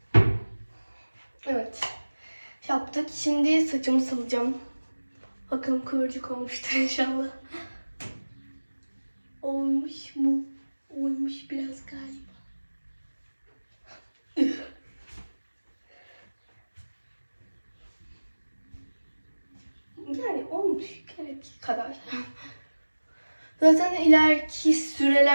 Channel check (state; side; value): inverted; both; correlation -1.00